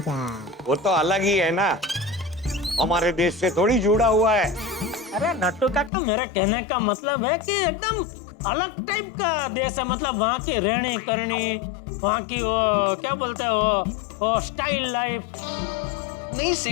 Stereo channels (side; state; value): right; drops out; at 5.9 s